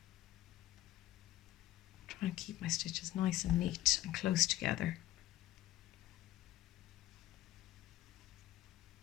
Try and keep my stitches nice and neat and close together.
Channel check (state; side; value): quieter; right; 15.0 dB